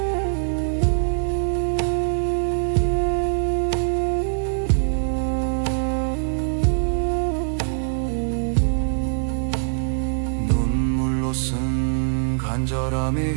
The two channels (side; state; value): left; silent; digital silence